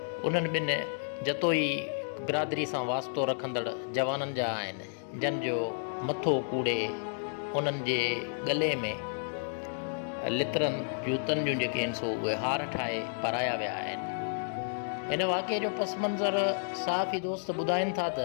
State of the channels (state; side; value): silent; right; digital silence